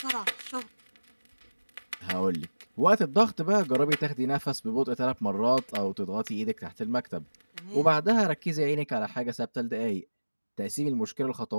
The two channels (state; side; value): inverted; both; correlation -1.00